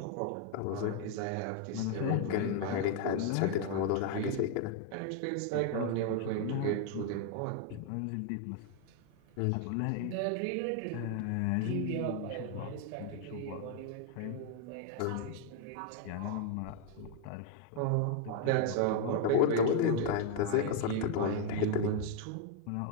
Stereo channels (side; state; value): both; different; correlation 0.00